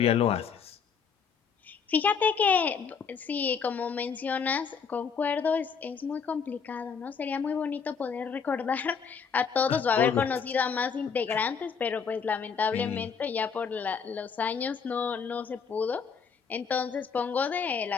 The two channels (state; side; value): quieter; right; 6.2 dB